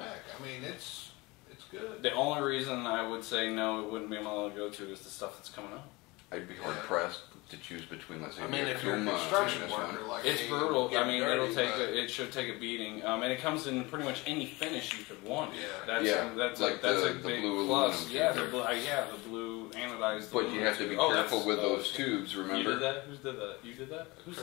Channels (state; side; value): quieter; right; 23.5 dB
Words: I mean, it's good. The only reason I would say no, it wouldn't be my go-to is the stuff that's coming up. I'd be hard pressed to choose between, let's say, I mean, the if you're a Akuma construction and this one. worker, like It's me, brutal. get I mean, dirty, it should take a beating, and it comes in pretty much any finish you could want. Yeah. That's like that's the a big blue plus. aluminum Yeah, tube. the blue anodized. But you have to be careful with those tubes, remember? You did that? Who did that? You did that? Who did